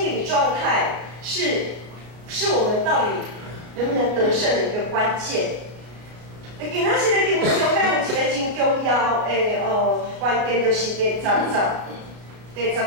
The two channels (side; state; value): left; late; 33 ms